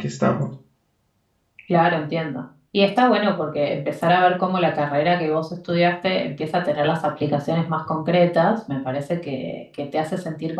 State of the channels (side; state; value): both; identical; correlation 1.00